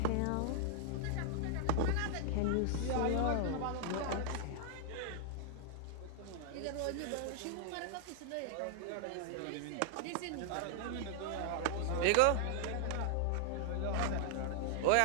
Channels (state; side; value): different; both; correlation -0.01